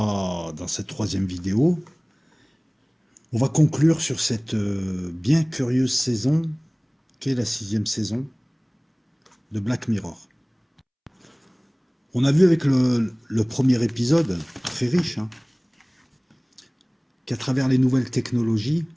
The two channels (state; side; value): identical; both; correlation 1.00